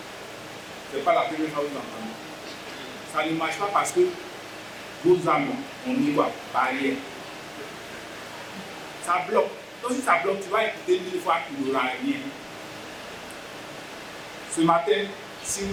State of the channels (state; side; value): identical; both; correlation 1.00